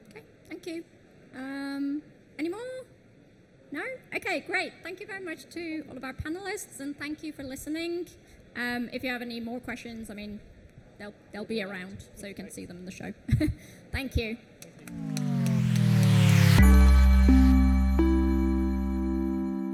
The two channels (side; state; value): both; identical; correlation 1.00